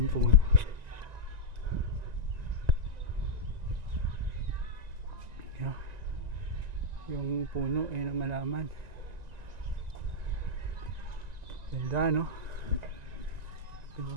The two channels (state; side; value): late; left; 1.9 ms